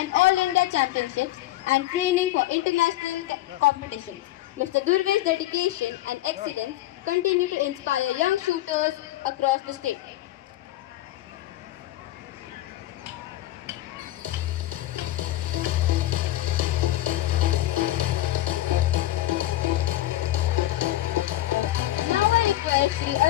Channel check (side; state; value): right; quieter; 15.3 dB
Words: all India championships and training for international competitions. Mr. Durve's dedication and excellence continue to inspire young shooters across the state. Now I request Sri